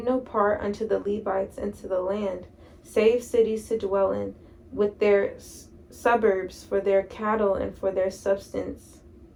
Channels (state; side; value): identical; both; correlation 1.00